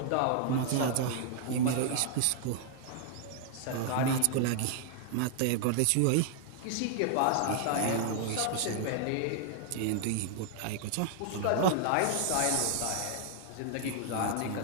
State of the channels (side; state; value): both; different; correlation 0.00